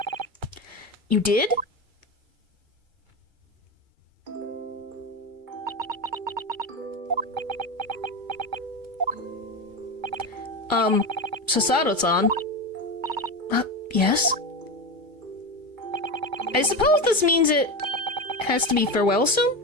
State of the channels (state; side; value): late; left; 2.3 ms